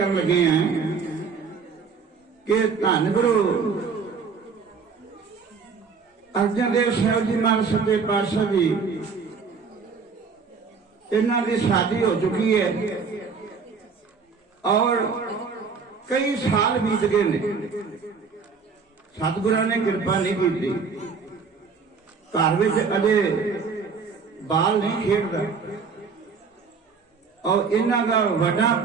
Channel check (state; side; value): quieter; left; 5.4 dB